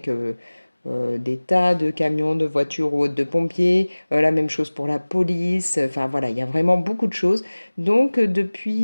des tas de camions, de voitures ou autres, de pompiers. La même chose pour la police. Enfin voilà, il y a vraiment beaucoup de choses. Donc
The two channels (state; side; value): inverted; both; correlation -1.00